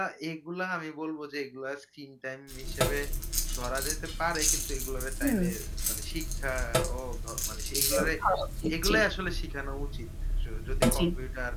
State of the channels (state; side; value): identical; both; correlation 1.00